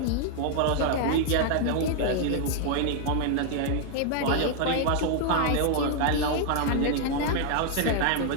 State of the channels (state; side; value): different; both; correlation 0.00